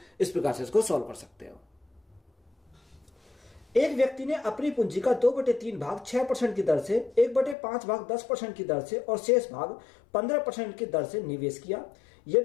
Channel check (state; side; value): drops out; right; at 7.6 s